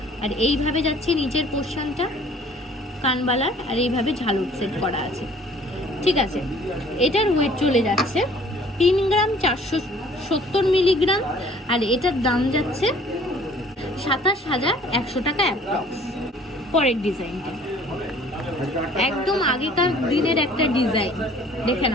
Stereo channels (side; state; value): both; normal; correlation 0.54